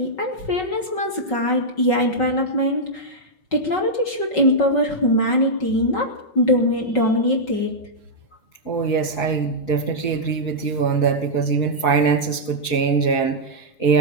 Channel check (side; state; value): right; late; 5.3 ms